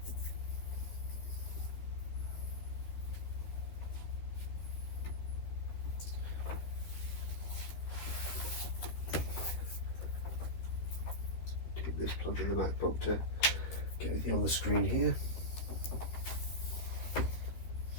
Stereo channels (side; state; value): right; late; 13 ms